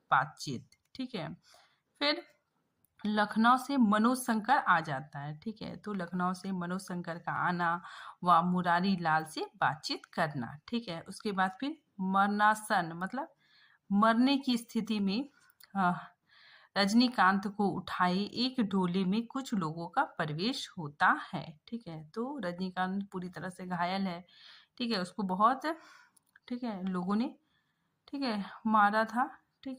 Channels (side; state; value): both; identical; correlation 1.00